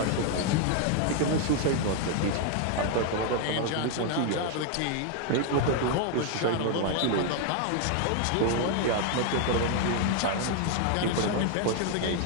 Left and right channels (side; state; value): both; different; correlation 0.00